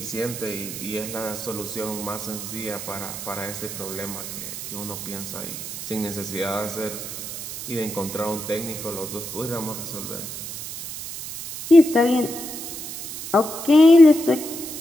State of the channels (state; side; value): noise; right; hiss, 8 dB below the sound